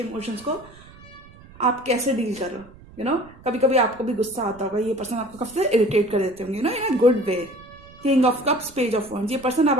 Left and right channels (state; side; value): noise; right; rumble, 22 dB below the sound